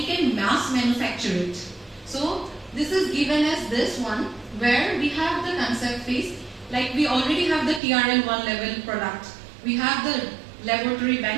can mass manufacture it. So this is given as this one where we have the concept phase, like we already have the TRL 1 level product. We have the laboratory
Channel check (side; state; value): left; drops out; at 7.8 s